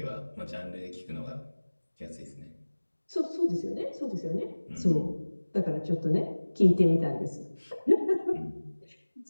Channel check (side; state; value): both; inverted; correlation -1.00